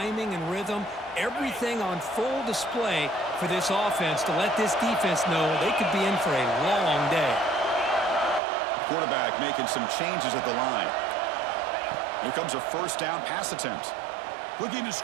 and rhythm. Everything on full display for this offense to let this defense know they could be in for a long day. Quarterback making some changes at the line. Here comes a 1st down pass attempt. Looking to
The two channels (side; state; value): left; drops out; at 8.4 s